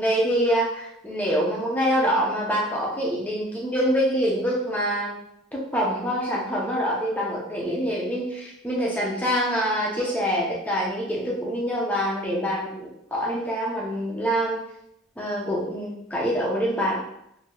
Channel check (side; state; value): both; normal; correlation 0.47